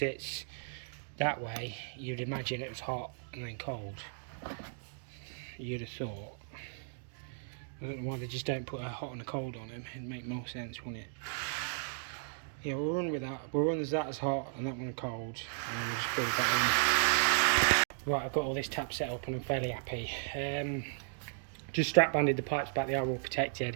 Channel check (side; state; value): left; silent; digital silence